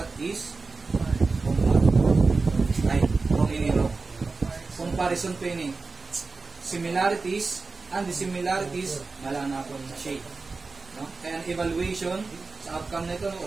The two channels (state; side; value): quieter; left; 4.0 dB